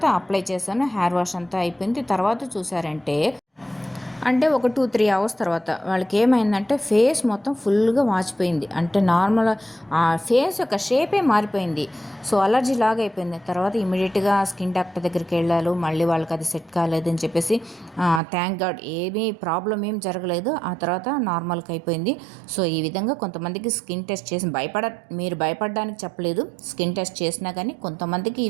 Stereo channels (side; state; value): left; drops out; at 18.2 s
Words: అప్లై చేశాను, హెయిర్ వాష్ అంతా అయిపోయింది. తర్వాత తర్వాత చూసారంటే అంటే ఒక 2-3 అవర్స్ తర్వాత వాళ్ళకి ఏమైందంటే ఫేస్ మొత్తం ఫుల్గా వాచిపోయింది. అంటే నార్మల్ ఆ ఫేస్ యొక్క షేపే మారిపోయింది. సో అలర్జీ లాగా అయిపోయింది. తర్వాత ఇమీడియట్గా స్కిన్ డాక్టర్ దగ్గరికి వెళ్ళారు. మళ్ళీ వాళ్ళకి అది సెట్ కాలేదని చెప్పేసి థ్యాంక్ గాడ్ ఏమీ ప్రాబ్లం ఏం జరగలేదు. ఆ తర్వాత నార్మల్గా అయిపోయింది. సో ఈ విధంగా కొంతమందికి స్కిన్ టెస్ట్ చేసి మీరు భయపడడానికి చెప్పలేదు. స్కిన్ టెస్ట్ చేసినా కానీ కొంతమందికి